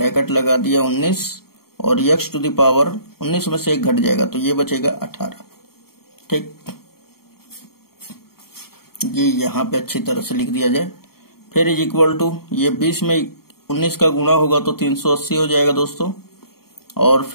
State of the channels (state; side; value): late; right; 0.94 ms